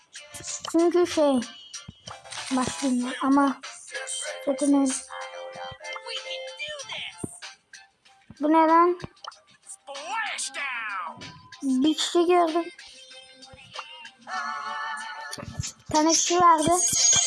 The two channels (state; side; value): identical; both; correlation 1.00